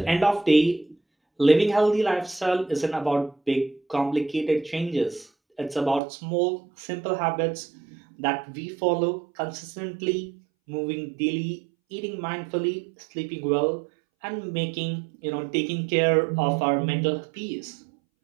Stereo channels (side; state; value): left; drops out; at 6.0 s